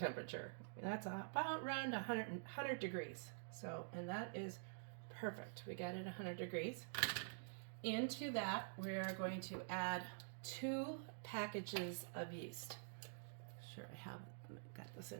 That's about around 100 degrees. So, and that is perfect. We got it 100 degrees. Into that, we are going to add 2 packages of yeast. Sure, I got this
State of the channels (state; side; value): silent; left; digital silence